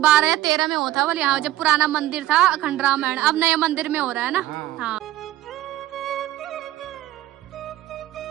या 13 में होता बोले यहाँ जब पुराना मंदिर था अखंड रामायण, अब नए मंदिर में हो रहा है ना।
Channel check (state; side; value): quieter; left; 14.9 dB